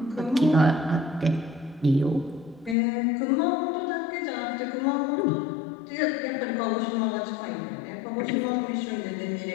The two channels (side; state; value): right; drops out; at 2.8 s